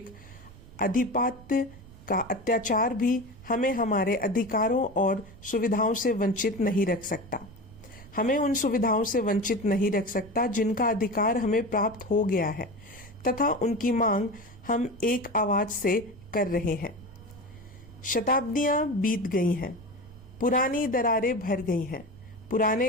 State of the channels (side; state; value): right; noise; rumble, 20 dB below the sound